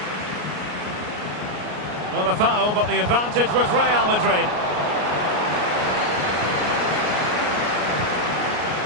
Well, a foul, but the advantage with Real Madrid.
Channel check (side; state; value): left; late; 33 ms